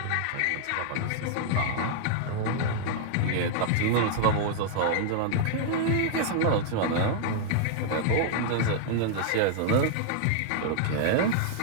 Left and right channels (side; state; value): both; different; correlation -0.01